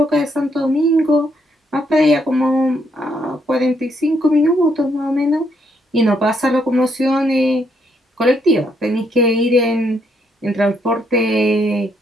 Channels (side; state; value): both; normal; correlation 0.74